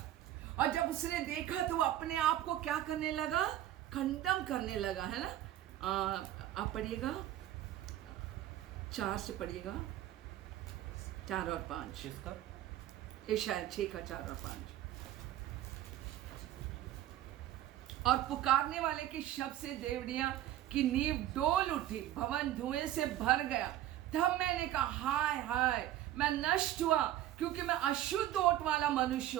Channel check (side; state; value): left; quieter; 13.1 dB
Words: और जब उसने देखा तो वो अपने आप को क्या करने लगा? खंडन करने लगा, है ना? आप पढ़िएगा 4 से पढ़िएगा, 4 और 5, ये शायद 6 का 4 और 5। और पुकारने वाले के शब्द से देवड़ियां की नींव डोल उठी, भवन धुएं से भर गया। तब मैंने कहा हाय हाय, मैं नष्ट हुआ, क्योंकि मैं अशुद्ध ओट वाला मनुष्य